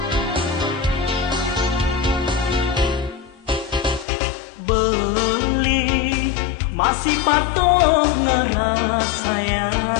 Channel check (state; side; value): drops out; right; at 4.0 s